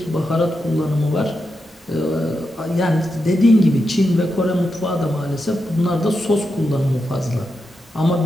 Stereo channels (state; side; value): normal; both; correlation 0.87